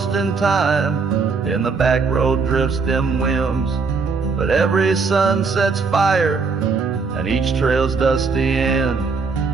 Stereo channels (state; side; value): quieter; left; 4.7 dB